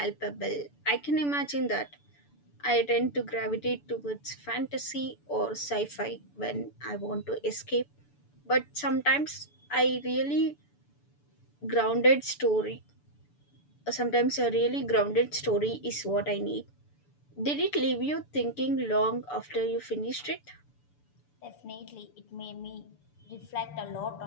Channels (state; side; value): late; right; 6.9 ms